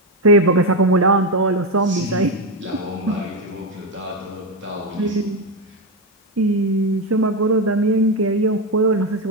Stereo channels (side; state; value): both; normal; correlation 0.09